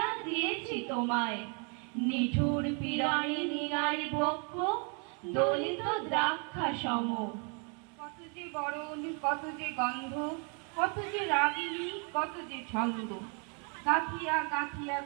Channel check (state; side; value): quieter; left; 37.2 dB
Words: দিয়েছি তোমায়। নিঠুর পীড়ানি নিগারি বক্ষ, দলিত দ্রাক্ষা সম। কত যে বরণ, কত যে গন্ধ, কত যে রাগিনী, কত যে ছন্দ, গাঁথিয়া গাঁথিয়া